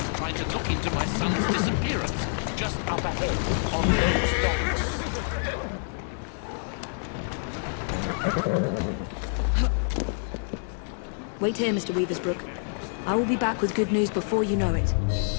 trying to look into my son's disappearance, just up ahead, on those docks. Wait here, Mr. Weaversbrook. I will be back with good news before you know it.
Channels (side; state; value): right; silent; digital silence